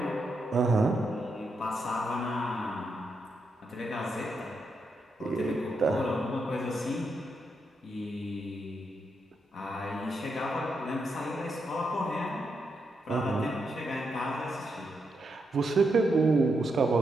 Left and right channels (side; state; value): both; normal; correlation 0.82